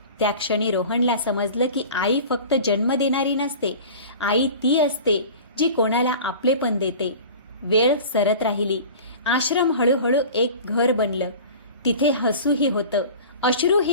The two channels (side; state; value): both; inverted; correlation -0.39